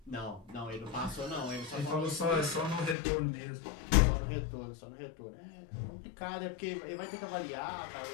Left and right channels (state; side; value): drops out; right; at 3.0 s